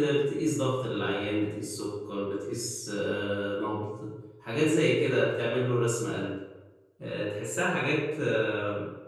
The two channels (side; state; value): both; identical; correlation 1.00